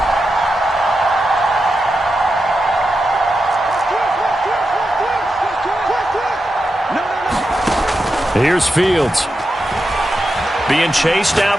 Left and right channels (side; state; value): both; normal; correlation 0.88